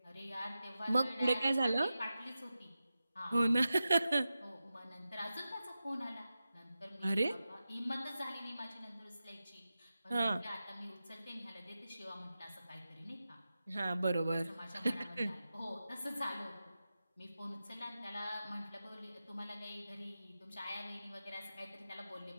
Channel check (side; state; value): both; inverted; correlation -0.92